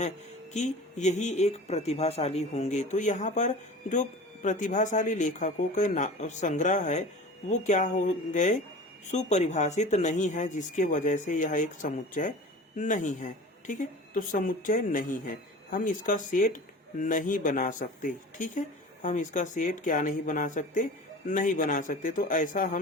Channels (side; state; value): both; normal; correlation 0.38